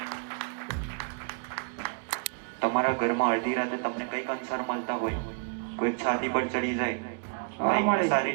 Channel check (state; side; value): quieter; left; 36.4 dB